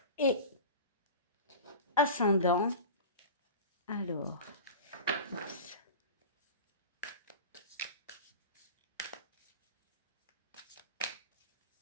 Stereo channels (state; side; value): inverted; both; correlation -0.31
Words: et ascendant. Alors, oups.